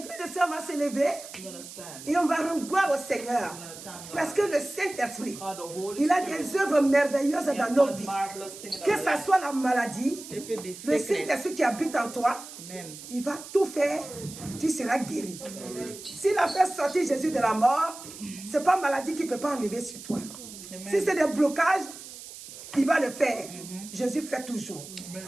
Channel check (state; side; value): noise; right; hiss, 14 dB below the sound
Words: frères et sœurs, on va se lever et on va rendre gloire au Seigneur. Parce que le Saint-Esprit, il a des œuvres merveilleuses dans nos vies. Que ce soit la maladie, le Saint-Esprit qui habite en toi, il va tout faire, tu seras guéri. S'il a fait sortir Jésus de la mort, ce n'est pas la maladie qui ne peut pas enlever sur toi. Si c'est des blocages, il va le faire. Jésus fait toujours.